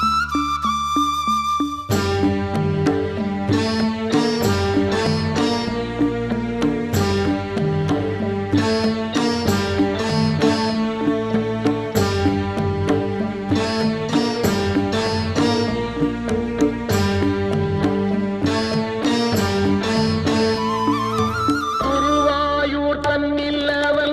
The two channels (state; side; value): identical; both; correlation 1.00